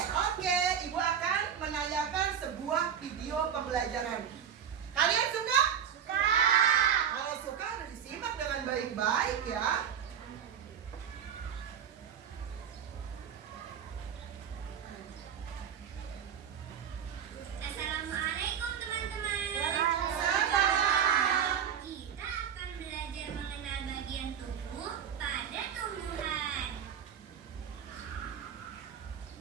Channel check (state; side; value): quieter; left; 8.3 dB